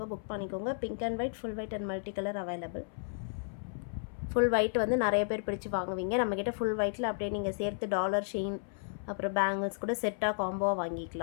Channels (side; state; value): right; silent; 56 dB below the other